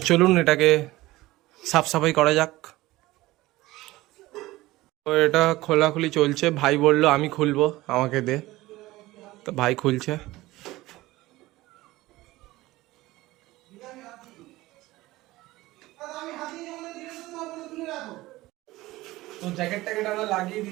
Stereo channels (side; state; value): left; quieter; 18.4 dB